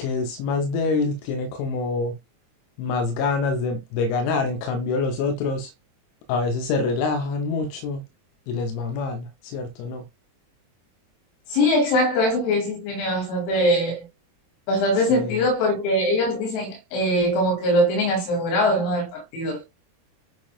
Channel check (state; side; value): late; right; 23 ms